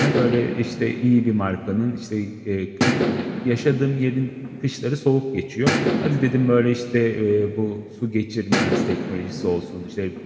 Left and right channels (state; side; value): identical; both; correlation 1.00